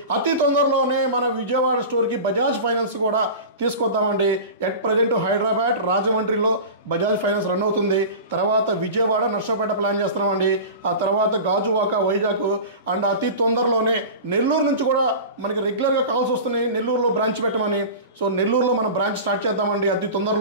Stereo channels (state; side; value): inverted; both; correlation -0.32